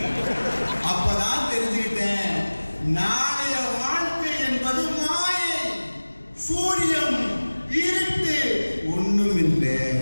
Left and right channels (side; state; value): both; inverted; correlation -1.00